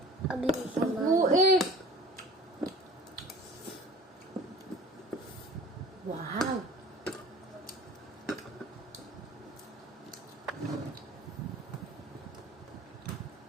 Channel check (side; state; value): both; normal; correlation 0.43